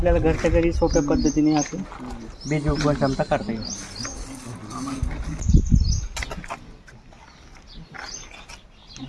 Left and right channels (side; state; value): both; identical; correlation 1.00